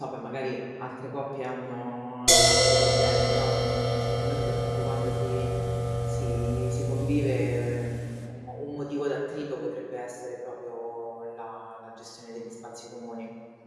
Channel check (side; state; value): both; identical; correlation 1.00